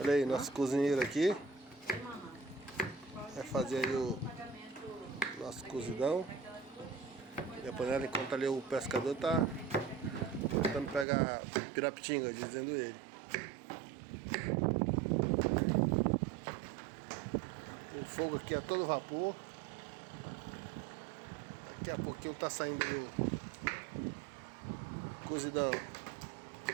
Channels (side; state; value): left; drops out; at 11.1 s